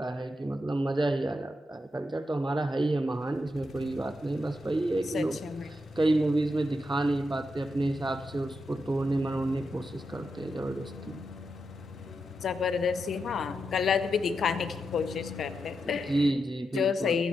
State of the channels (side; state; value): both; normal; correlation 0.85